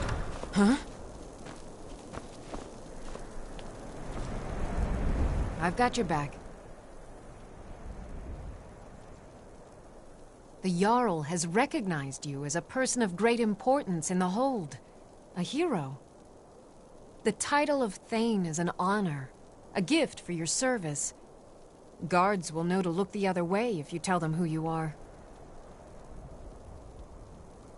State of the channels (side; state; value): both; identical; correlation 1.00